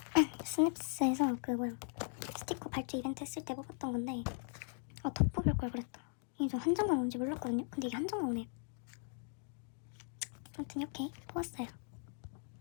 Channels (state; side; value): silent; right; 52 dB below the other